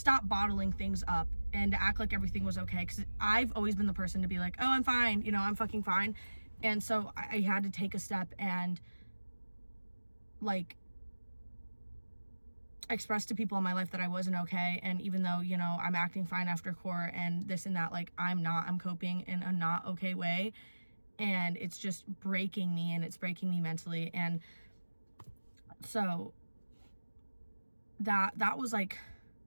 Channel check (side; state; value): both; inverted; correlation -1.00